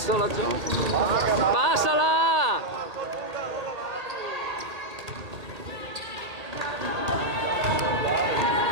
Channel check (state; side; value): late; left; 1.8 ms